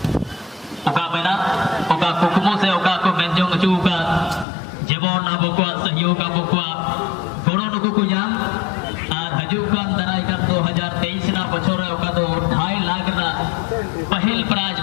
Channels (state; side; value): drops out; right; at 4.5 s